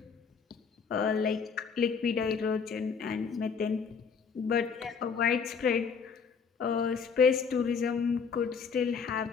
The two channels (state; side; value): quieter; right; 5.9 dB